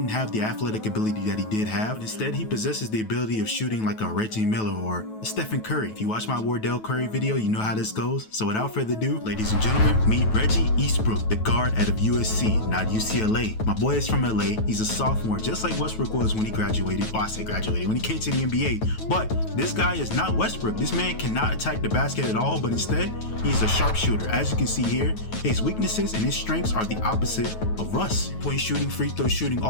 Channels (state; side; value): late; right; 9.2 ms